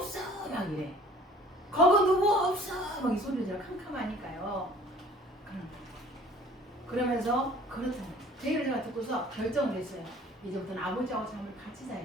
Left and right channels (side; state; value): both; normal; correlation 0.51